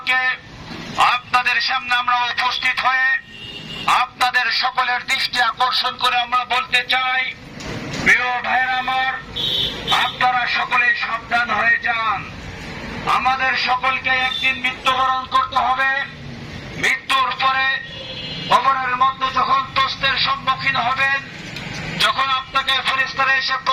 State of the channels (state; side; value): identical; both; correlation 1.00